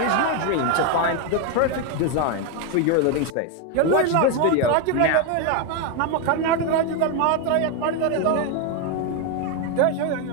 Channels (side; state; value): both; different; correlation 0.01